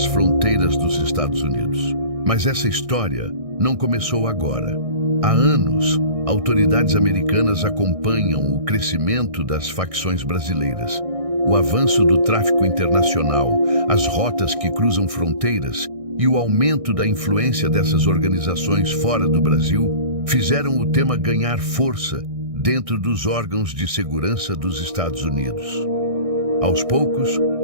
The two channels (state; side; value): late; left; 1.6 ms